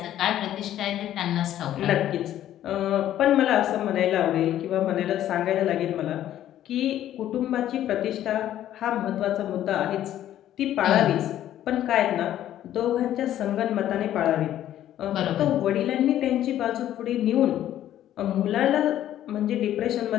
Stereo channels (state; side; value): quieter; right; 12.1 dB